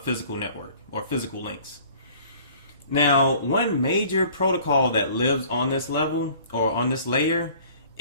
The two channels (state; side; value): inverted; both; correlation -0.52